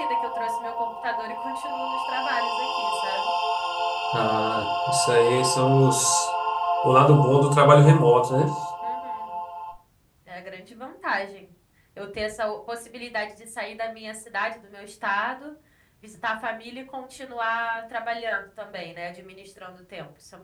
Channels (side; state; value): both; identical; correlation 1.00